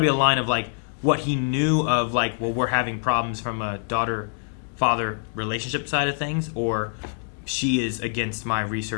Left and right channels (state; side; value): silent; right; 59 dB below the other